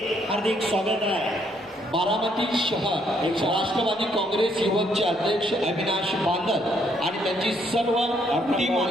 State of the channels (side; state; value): both; normal; correlation 0.70